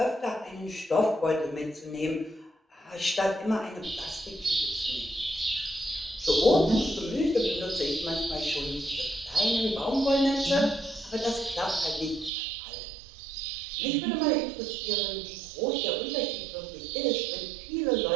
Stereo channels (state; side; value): drops out; left; at 12.3 s